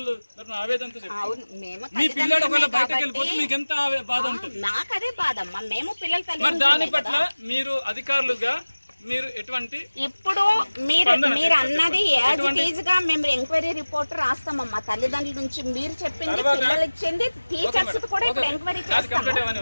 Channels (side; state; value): both; inverted; correlation -1.00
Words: ఆవేదనతో చెప్తాను. మీ పిల్లడు ఒకవేళ బయటకు వెళ్ళిపోతే మీకు ఎంత బాధ ఉంటుంది? నాకు అదే బాధ అమ్మా. మేము పిల్లలు మరి దాని పట్ల మీరు అధికారులుగా మీరు ఎటువంటి ఇప్పుడు మీరు అన్నది యాజ్ ఇట్ ఈజ్ గా మేము ఎంక్వైరీ రిపోర్ట్ రాస్తామమ్మా. తల్లిదండ్రుల నుంచి మీరు చెప్పింది, పిల్లలు ఇచ్చింది, టీచర్స్ కూడా ఇప్పుడు ఎంక్వైరీ చేస్తాం.